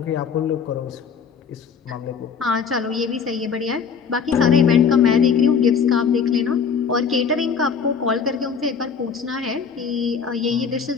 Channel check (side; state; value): right; quieter; 6.3 dB